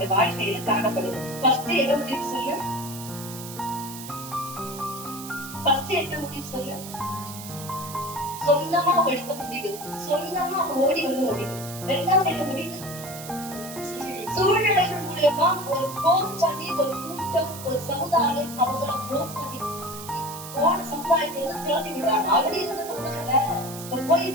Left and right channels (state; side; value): noise; right; hiss, 12 dB below the sound